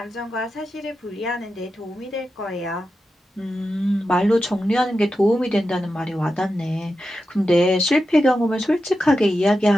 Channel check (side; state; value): both; normal; correlation 0.90